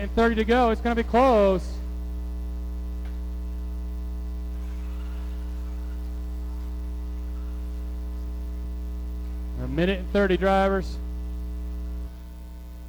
and 30 to go, it's going to be close. A minute and 30, drivers.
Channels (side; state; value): both; identical; correlation 1.00